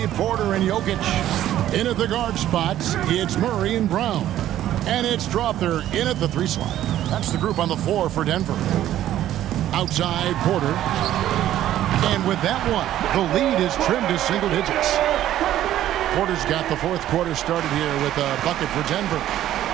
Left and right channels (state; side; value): quieter; left; 12.6 dB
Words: Porter and Jokic. In at the guard spots, it's Murray and Brown. And it's Strother in at the 3 slot. That's the group on the floor for Denver. Outside, Porter. And with that one, the lead is trimmed to single digits. Porter's got the fourth quarter started here with a bucket for Denver.